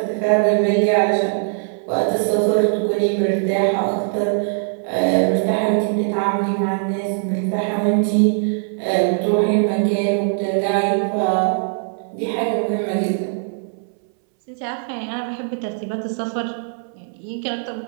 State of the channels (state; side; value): silent; left; 63 dB below the other